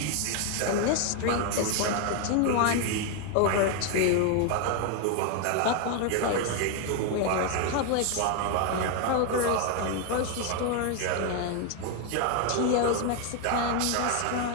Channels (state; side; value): different; both; correlation 0.01